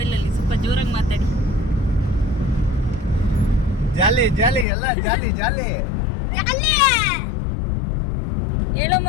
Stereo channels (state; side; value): drops out; right; at 4.7 s